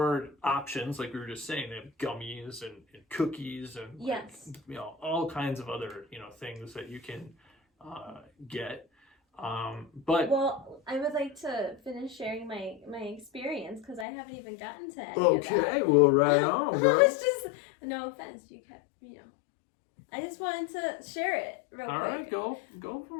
options, like we were just saying. They have gummies and cookies and like, you know, all kinds of other, you know, things that you can get. But I would like to finish sharing my experience, because I haven't even gotten to any of that. Well, right on, bro. It's just, no offense, you know. I just wanted to share it real quick. All right, go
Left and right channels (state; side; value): drops out; right; at 14.1 s